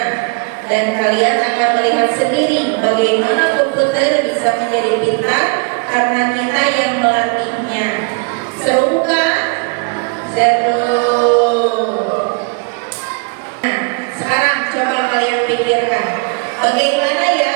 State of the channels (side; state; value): left; quieter; 33.3 dB